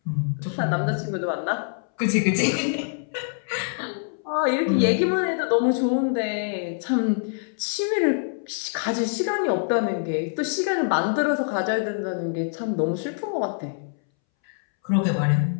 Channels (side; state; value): right; silent; 62 dB below the other